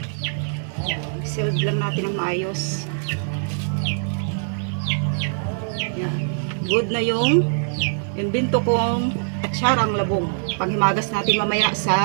Sealed lang natin ang maayos. Yan. Good na yung imbento kong atsarang labong. Panghimagas natin mamaya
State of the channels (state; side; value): silent; left; digital silence